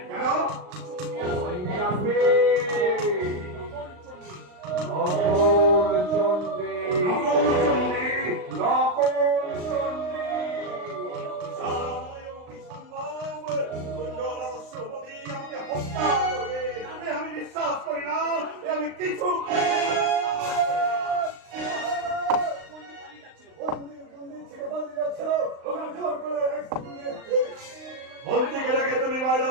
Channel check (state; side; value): late; left; 39 ms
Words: কেন? চণ্ডী আসবে, নকল চণ্ডী নকল চণ্ডী, নকল চণ্ডী। নকল চণ্ডী। আমাকে হত্যা করবে আমি বিশ্বাস করি না, আমি কিছু চণ্ডী পালিয়ে যাচ্ছিল। মন্ত্রীকে ডেকে তুমি বাইরে